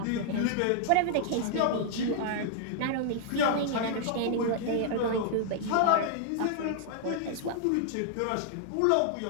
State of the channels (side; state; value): both; different; correlation -0.01